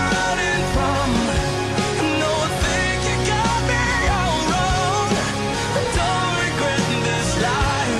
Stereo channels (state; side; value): identical; both; correlation 1.00